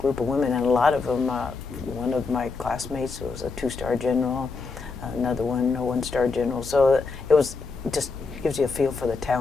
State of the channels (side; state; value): right; quieter; 4.4 dB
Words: of women, and a lot of them, one of my classmates was a 2-star general, another one a 1-star general. So it was just gives you a feel for the